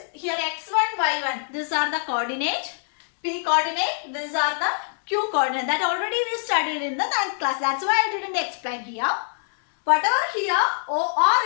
here x1, y1. These are the coordinate. P coordinate. These are the Q coordinate. That already we studied in the 9th class. That's why I didn't explain here. Whatever here, OR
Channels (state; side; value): silent; right; digital silence